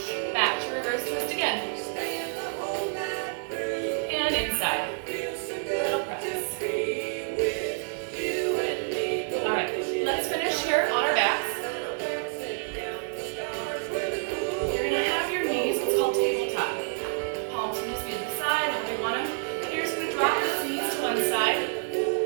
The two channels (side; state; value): left; silent; 56 dB below the other